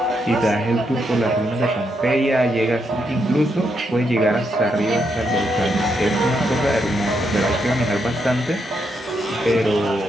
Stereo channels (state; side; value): normal; both; correlation 0.80